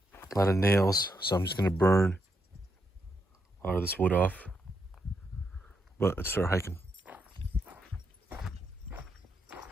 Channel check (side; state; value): both; normal; correlation 0.81